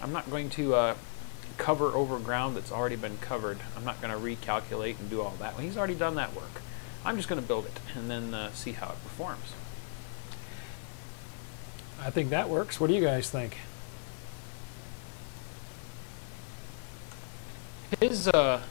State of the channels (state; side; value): silent; right; digital silence